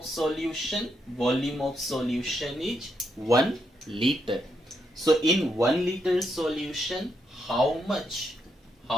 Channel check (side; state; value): both; normal; correlation 0.80